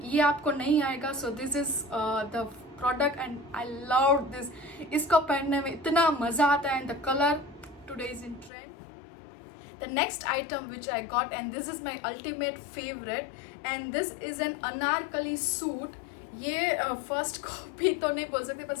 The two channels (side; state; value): right; drops out; at 8.5 s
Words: ये आपको नहीं आएगा. So this is the product and I love this. इसको पहनने में इतना मजा आता है and the colour today is in trend. The next item which I got, and this is my ultimate favorite, and this is an anarkali suit. ये first copy तो नहीं बोल सकते पर